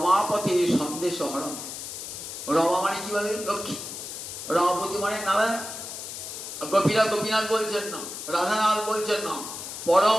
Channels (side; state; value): left; noise; hiss, 8 dB below the sound